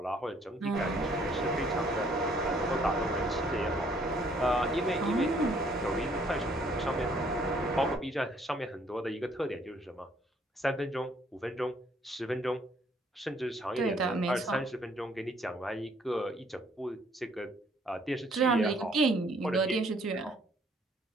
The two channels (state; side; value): normal; both; correlation 0.64